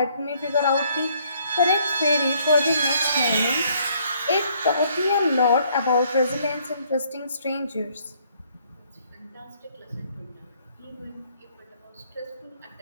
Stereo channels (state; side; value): inverted; both; correlation -0.65